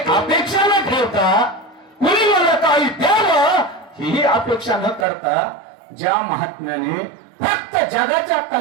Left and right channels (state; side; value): drops out; left; at 5.1 s